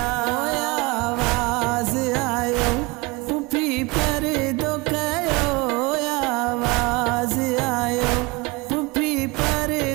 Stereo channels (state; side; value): quieter; left; 25.1 dB